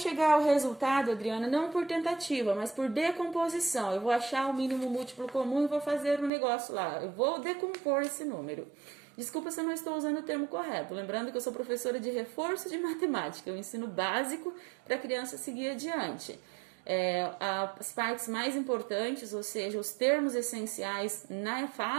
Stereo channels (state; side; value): drops out; left; at 6.3 s